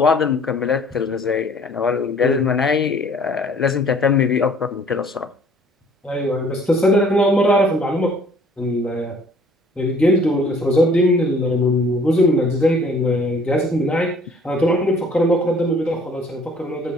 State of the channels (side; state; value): both; normal; correlation 0.56